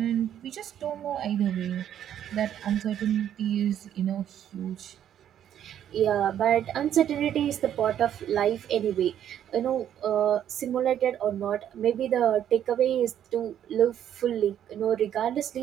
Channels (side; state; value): left; quieter; 10.3 dB